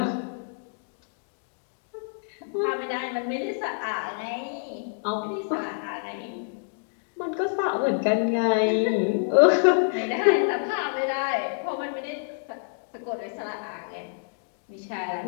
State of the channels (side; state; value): right; silent; digital silence